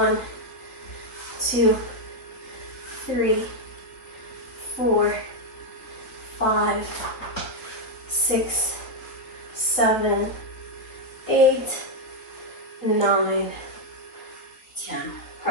2, 3, 4, 5, 6, 7, 8, 9, 10.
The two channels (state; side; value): late; right; 4.0 ms